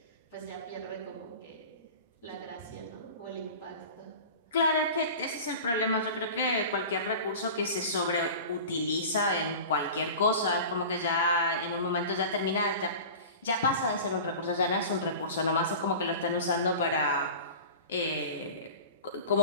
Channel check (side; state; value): both; inverted; correlation -0.36